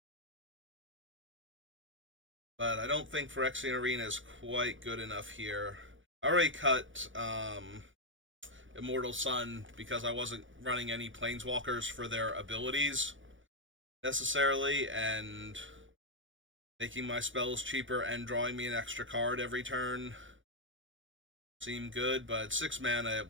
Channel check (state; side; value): late; left; 0.56 ms